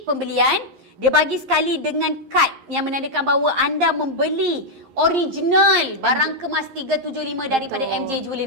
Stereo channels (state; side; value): late; left; 11 ms